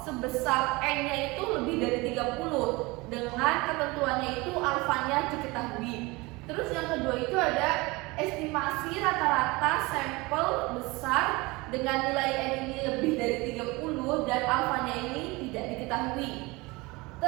sebesar N-nya itu lebih dari 30 dengan ketentuannya itu alfanya diketahui. Terus yang kedua itu ada estimasi rata-rata sampel besar dengan nilai N ini lebih dari 30 dan alfanya ini tidak diketahui.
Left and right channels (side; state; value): left; quieter; 23.7 dB